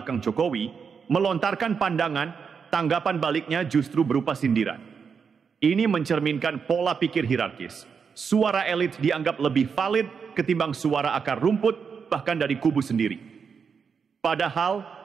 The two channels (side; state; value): left; quieter; 6.1 dB